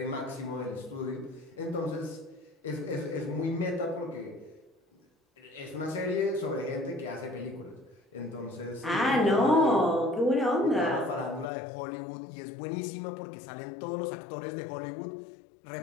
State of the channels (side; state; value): right; drops out; at 11.5 s